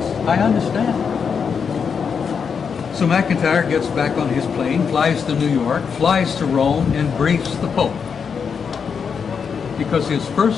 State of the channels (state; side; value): quieter; right; 6.4 dB